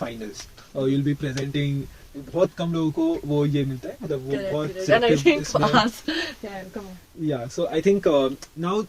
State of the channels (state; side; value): identical; both; correlation 1.00